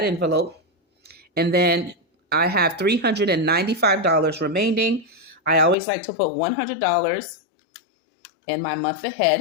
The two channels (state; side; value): drops out; right; at 5.8 s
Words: envelope. And then I have $395 remaining. I always like to put $100 in my month